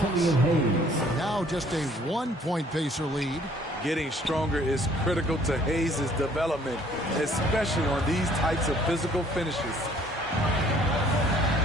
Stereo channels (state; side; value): normal; both; correlation 0.59